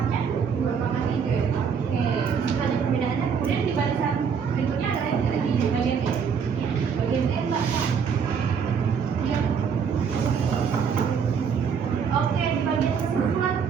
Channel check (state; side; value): quieter; left; 6.7 dB